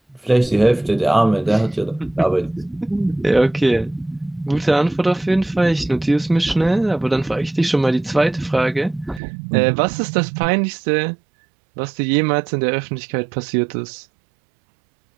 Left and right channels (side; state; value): left; drops out; at 9.2 s